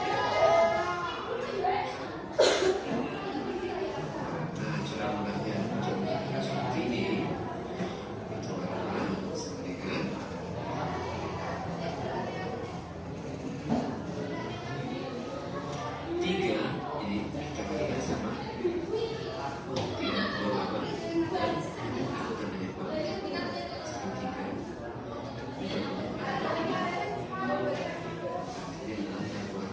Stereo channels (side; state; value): both; identical; correlation 1.00